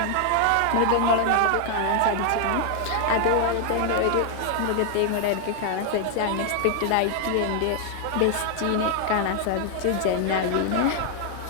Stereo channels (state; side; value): different; both; correlation 0.00